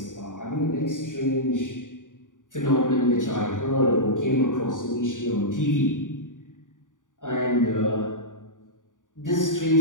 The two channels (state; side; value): late; right; 0.88 ms